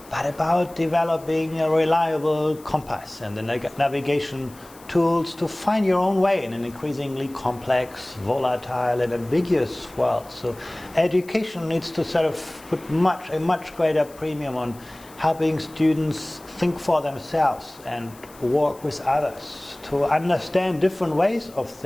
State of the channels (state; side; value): noise; left; hiss, 23 dB below the sound